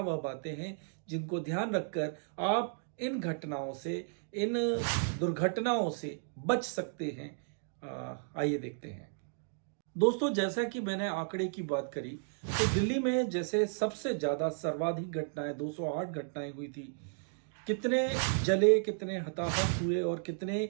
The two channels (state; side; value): silent; left; digital silence